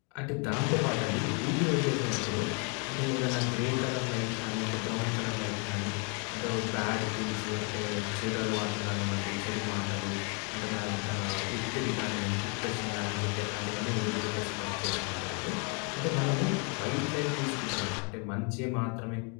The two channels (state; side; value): quieter; right; 35.2 dB